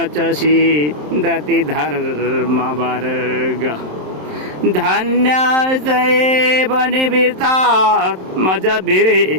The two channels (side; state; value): left; late; 27 ms